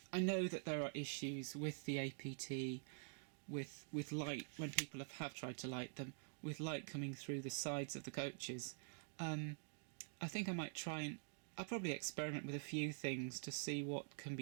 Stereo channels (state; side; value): silent; left; digital silence